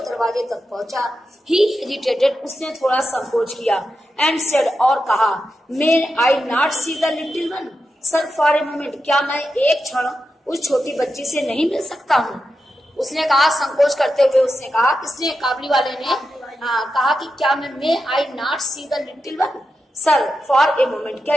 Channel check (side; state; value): both; normal; correlation 0.89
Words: दरवाजे तक पहुंचा, he hesitated, उसने थोड़ा संकोच किया, and said, और कहा, May I not see the little one? Sir for a moment, क्या मैं एक क्षण उस छोटी बच्ची से नहीं मिल सकता हूँ? उसने कहा, संकोच करते हुए उसने कहा, इसने काबुलीवाले ने कहा कि क्या मैं may I not see the little one? Sir for a moment, क्या